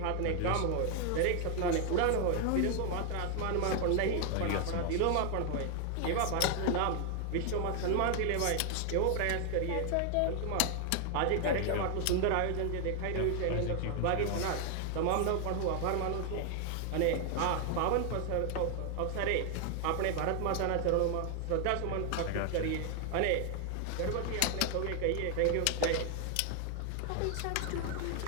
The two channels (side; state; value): both; different; correlation 0.00